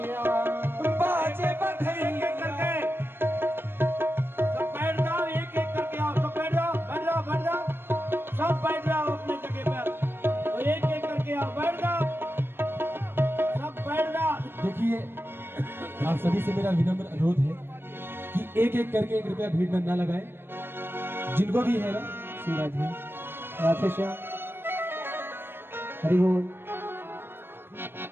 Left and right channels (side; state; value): left; late; 0.10 ms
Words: बाजे बधैया। सब बैठ जाओ, एक एक करके आओ। सब बैठ जाओ, बैठ जाओ, बैठ जाओ। सब बैठ जाओ अपने जगह पर। और एक एक करके आओ, बैठ जाओ, सब बैठ जाओ। देखिए आप सभी से मेरा विनम्र अनुरोध है कि एक एक करके कृपया भीड़ में ना लगाए। जिनको भी है ना शिवराज जी, राधे श्याम, हरि बोल।